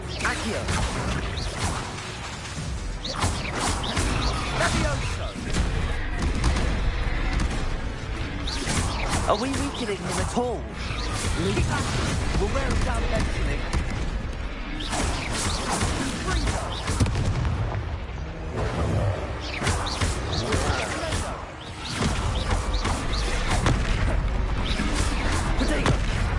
Are we weakening him at all? We'll wear him down eventually.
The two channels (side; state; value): both; identical; correlation 1.00